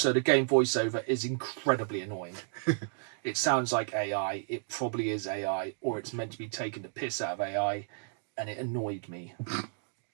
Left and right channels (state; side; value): silent; left; 56 dB below the other